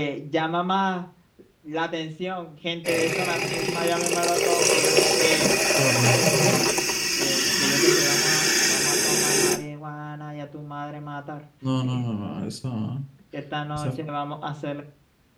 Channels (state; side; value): identical; both; correlation 1.00